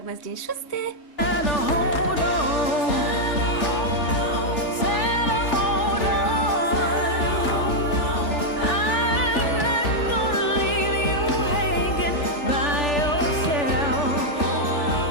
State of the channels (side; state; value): right; late; 3.4 ms